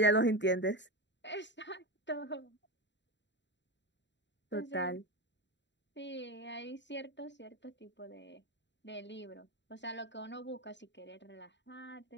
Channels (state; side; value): late; right; 0.52 ms